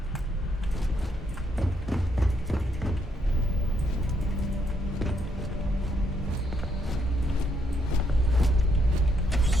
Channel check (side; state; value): both; normal; correlation 0.74